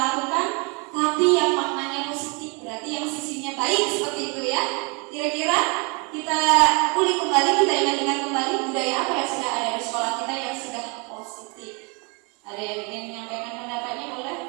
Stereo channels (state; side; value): quieter; left; 31.7 dB